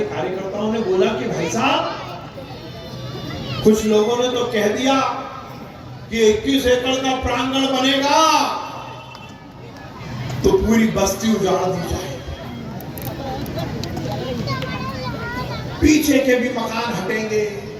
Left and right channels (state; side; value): identical; both; correlation 1.00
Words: कार्यकर्ताओं ने बोला कि भाई साहब, कुछ लोगों ने तो कह दिया कि 21 एकड़ का प्रांगण बनेगा तो पूरी बस्ती उजाड़ दी जाए, पीछे के भी मकान हटेंगे,